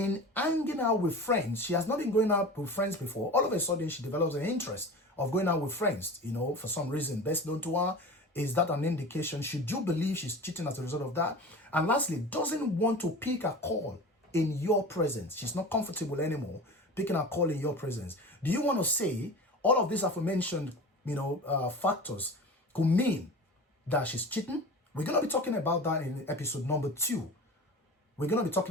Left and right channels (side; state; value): both; normal; correlation 0.34